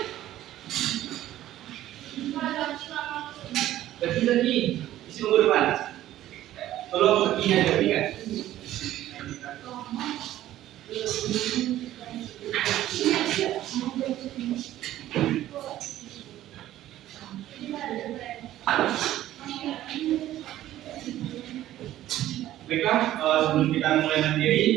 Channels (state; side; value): quieter; left; 13.7 dB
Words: Lagi isi buku depan. Tolong perginya dari kan. Baiklah, sebelum kita mulai